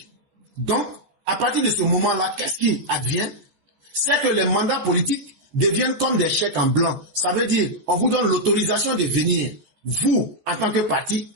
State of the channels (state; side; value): late; left; 14 ms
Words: Donc, à partir de ce moment-là, qu'est-ce qui advient? C'est que les mandats politiques deviennent comme des chèques en blanc. Ça veut dire, on vous donne l'autorisation de venir. Vous, en tant que parti,